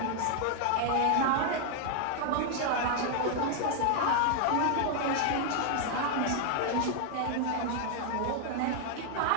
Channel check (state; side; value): different; both; correlation 0.00